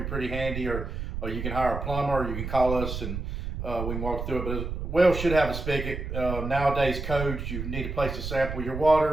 pretty handy, or you can hire a plumber, or you can call us and we can walk through it. But a well should have a spigot. Nowadays codes, you need a place to sample your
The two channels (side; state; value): right; noise; rumble, 5 dB below the sound